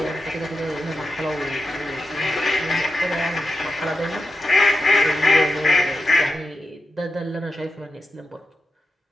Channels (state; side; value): normal; both; correlation 0.88